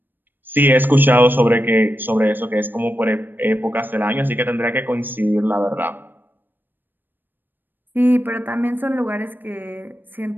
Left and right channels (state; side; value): late; left; 0.093 ms